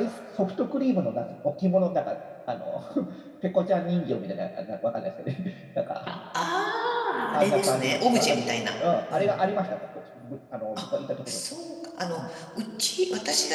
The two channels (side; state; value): both; identical; correlation 1.00